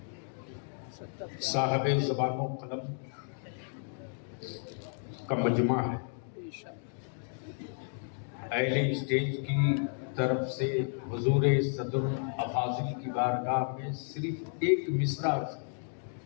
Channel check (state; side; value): silent; right; 56 dB below the other